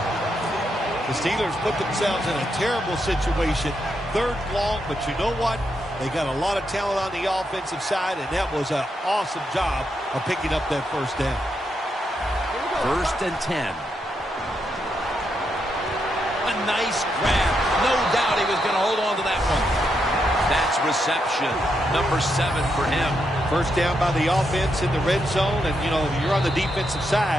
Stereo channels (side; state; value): both; normal; correlation 0.81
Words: The Steelers put themselves in a terrible situation. Third long, but you know what? They got a lot of talent on the offensive side, and that was an awesome job of picking up that first down. 1st and 10. A nice grab. No doubt he was going to hold on to that one. That's reception. Number 7 for him. First down by the offense in the red zone. And, you know, if you're on the defensive